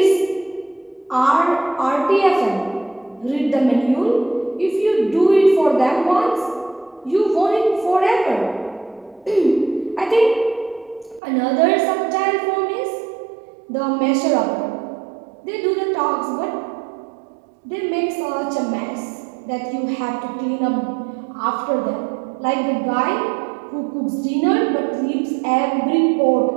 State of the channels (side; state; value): left; drops out; at 11.2 s